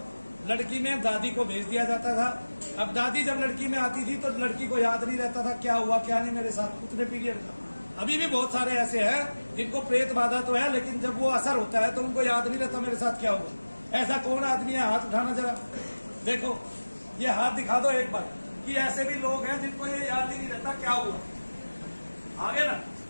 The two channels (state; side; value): inverted; both; correlation -1.00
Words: लड़की में दादी को भेज दिया जाता था। अब दादी जब लड़की में आती थी तो लड़की को याद नहीं रहता था क्या हुआ क्या नहीं मेरे साथ उतने पीरियड का। अभी भी बहुत सारे ऐसे हैं जिनको प्रेत बाधा तो है, लेकिन जब वो असर होता है तो उनको याद नहीं रहता मेरे साथ क्या हुआ। ऐसा कौन आदमी है, हाथ उठाना जरा, देखो ये हाथ दिखा दो एक बार, कि ऐसे भी लोग हैं जिनको ये याद ही नहीं रहता क्या हुआ। आगे ना,